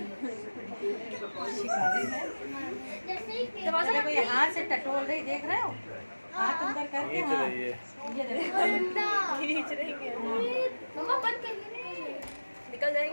देखो ये हाथ से टटोल रही देख रहे हो हाथ अंदर करके हाँ ये देखो खींच रही है मम्मा बंद कर निकल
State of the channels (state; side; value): inverted; both; correlation -1.00